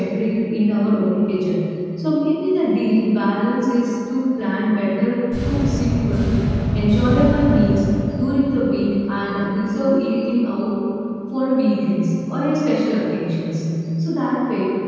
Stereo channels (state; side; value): identical; both; correlation 1.00